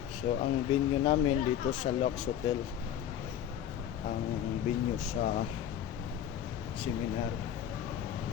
So, ang venue namin dito sa Lux Hotel. Ang venue sa seminar.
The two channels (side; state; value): right; quieter; 10.1 dB